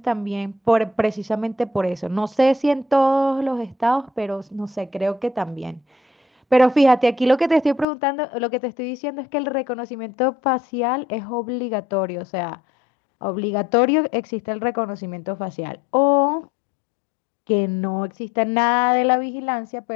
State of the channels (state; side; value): drops out; right; at 7.9 s